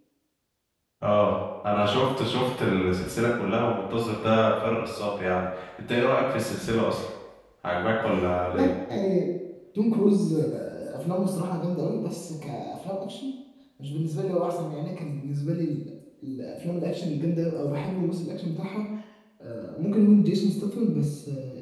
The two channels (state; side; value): identical; both; correlation 1.00